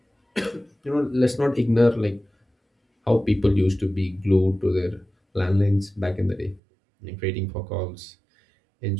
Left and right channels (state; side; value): drops out; left; at 6.6 s